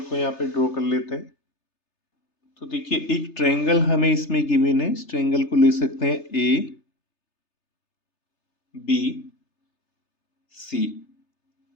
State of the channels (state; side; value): late; right; 3.3 ms